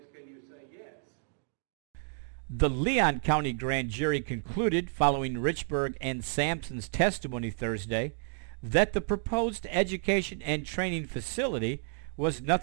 can you say yes? The Leon County Grand Jury concluded, following Richburg and Sampson's testimony Thursday, that the proposed education and training facility was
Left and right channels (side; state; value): left; silent; 57 dB below the other